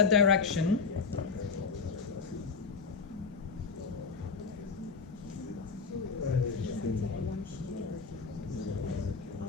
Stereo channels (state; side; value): quieter; right; 5.0 dB